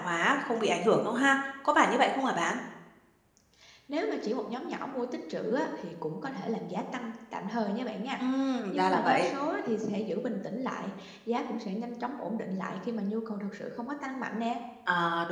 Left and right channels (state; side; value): identical; both; correlation 1.00